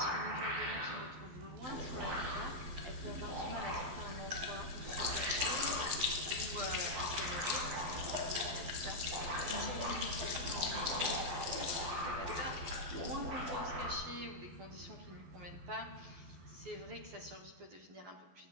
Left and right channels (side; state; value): left; late; 12 ms